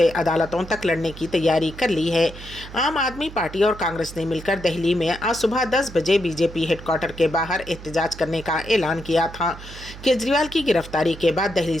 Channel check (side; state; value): right; noise; hum, 15 dB below the sound